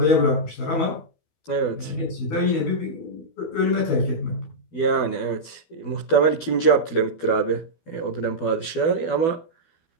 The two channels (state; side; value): late; right; 12 ms